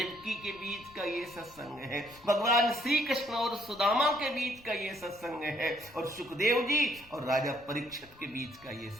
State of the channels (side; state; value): left; noise; rumble, 25 dB below the sound